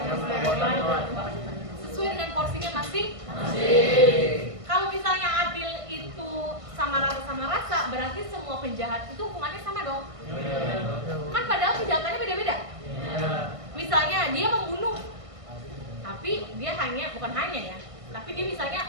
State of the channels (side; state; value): left; late; 1.5 ms